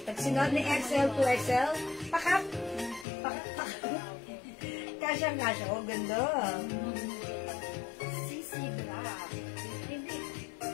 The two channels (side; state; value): right; drops out; at 3.1 s